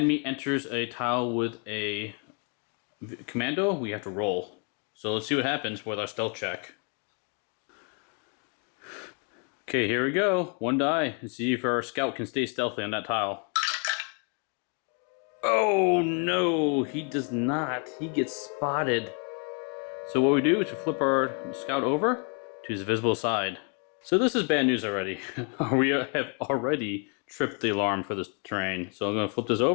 enters a tile with a commando, we have to roll. So let's see what happens with our stealth check. Okay, here we go. 1 die, and see if our scout can stay stealthy on that tile. Oh no, he does not. He gets spotted. So what we do is we flip our scout over to his visible side. So this is bad news already. We have already tripped the alarm for this terrain. So I'm going to flip this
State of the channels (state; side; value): quieter; right; 39.1 dB